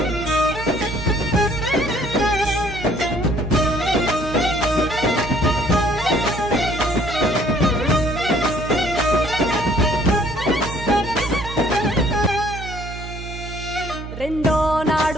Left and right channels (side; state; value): right; noise; hum, 10 dB below the sound